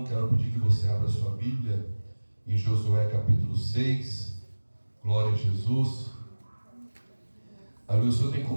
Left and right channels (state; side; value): inverted; both; correlation -1.00